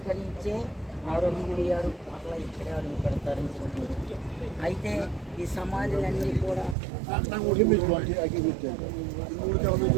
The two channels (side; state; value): left; drops out; at 6.8 s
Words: నుంచే ఆరోగ్యమయ్యారు, అట్లా ఇక్కడే అడుగు పెడతారని చెప్పారు. అయితే ఈ సమాధులన్నీ కూడా